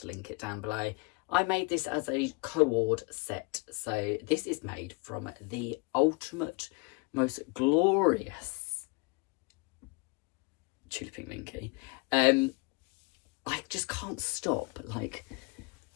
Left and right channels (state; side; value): quieter; right; 29.2 dB